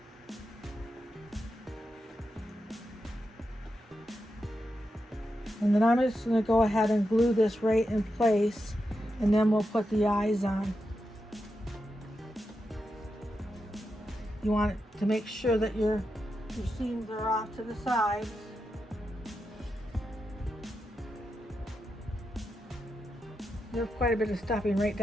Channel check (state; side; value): normal; both; correlation 0.87